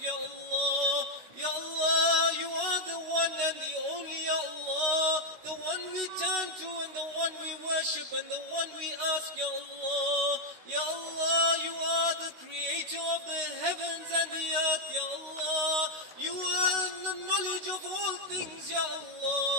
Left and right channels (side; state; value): left; late; 16 ms